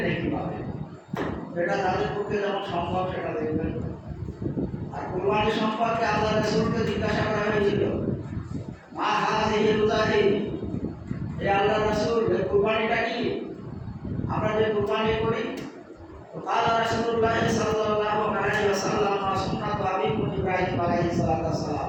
নেকি পাবে। এটা তাদের পক্ষে যেমন সম্ভব সেটা দেখবেন। আর কুরবানি সম্পর্কে আল্লাহ রাসূলকে জিজ্ঞাসা করা হয়েছিল, মা হাযিহি রোজাহি, হে আল্লাহ রাসূল এই কুরবানিটা কি? আমরা যে কুরবানি করি, তো কালা রাসূলুল্লাহ সাল্লাল্লাহু আলাইহি ওয়াসাল্লাম সুন্নাত আবিকুম ইব্রাহিম আলাইহিস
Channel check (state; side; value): identical; both; correlation 1.00